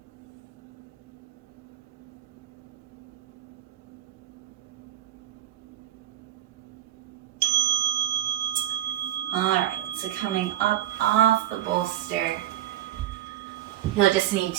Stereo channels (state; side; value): quieter; left; 12.3 dB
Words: All right, so coming up off the bolster, you'll just need